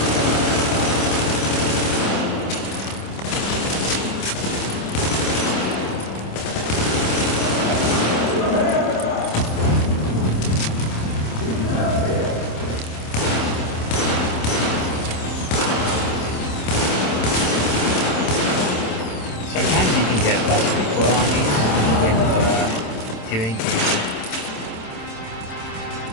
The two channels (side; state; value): right; late; 27 ms